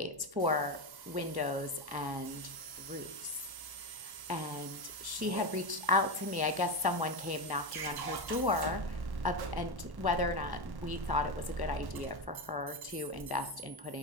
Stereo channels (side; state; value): left; late; 1.1 ms